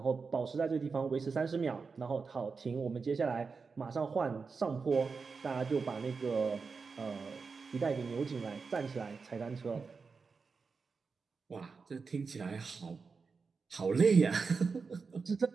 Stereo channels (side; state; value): left; quieter; 4.9 dB